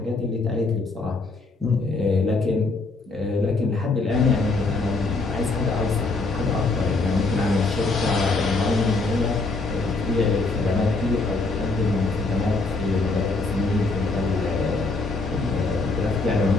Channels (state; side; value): quieter; right; 3.5 dB